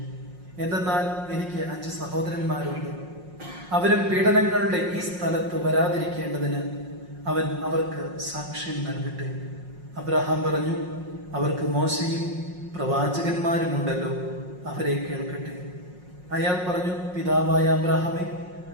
എന്തെന്നാൽ എനിക്ക് 5 സഹോദരന്മാരുണ്ട്. അവരും പീഡനങ്ങളുടെ ഈ സ്ഥലത്ത് വരാതിരിക്കേണ്ടതിന് അവൻ അവർക്ക് സാക്ഷ്യം നൽകട്ടെ. അബ്രഹാം പറഞ്ഞു, അവർക്ക് മോശയും പ്രവാചകന്മാരുമുണ്ടല്ലോ, അവരെ കേൾക്കട്ടെ. അയാൾ പറഞ്ഞു, പിതാവായ അബ്രഹാമേ,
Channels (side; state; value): left; late; 5.5 ms